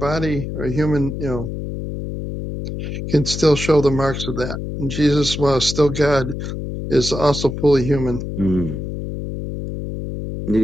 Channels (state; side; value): noise; left; hum, 6 dB below the sound